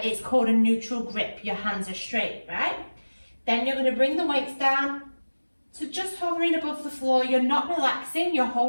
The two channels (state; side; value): inverted; both; correlation -1.00